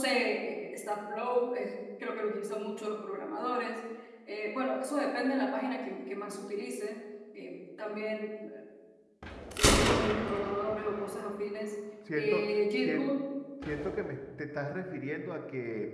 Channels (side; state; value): both; identical; correlation 1.00